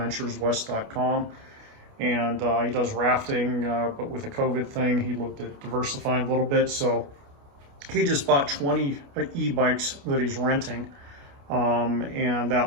And he does rafting, but with the COVID thing, he looked at diversifying a little bit. So he just bought 20 e-bikes that he's renting. And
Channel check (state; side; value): late; left; 29 ms